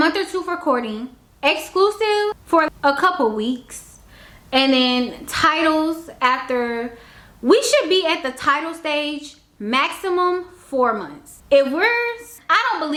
or 2 for courting, exclusive for a couple weeks. And then titles after, we should be at the title stage maximum 4 months. I don't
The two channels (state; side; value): identical; both; correlation 1.00